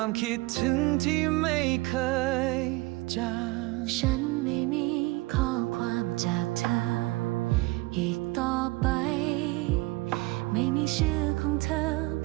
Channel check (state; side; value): quieter; left; 22.1 dB